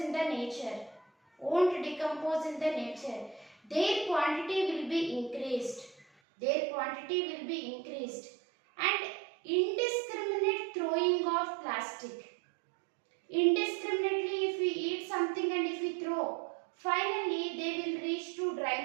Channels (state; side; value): drops out; left; at 6.1 s